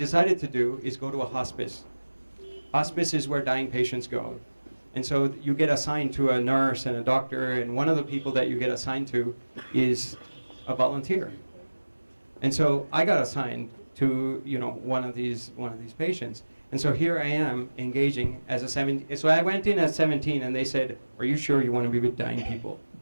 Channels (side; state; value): both; inverted; correlation -1.00